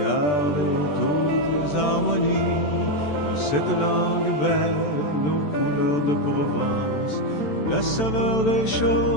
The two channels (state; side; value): late; right; 14 ms